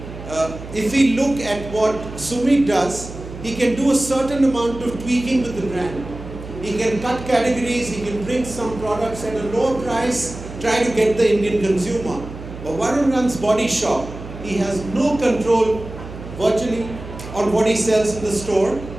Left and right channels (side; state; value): right; noise; hum, 12 dB below the sound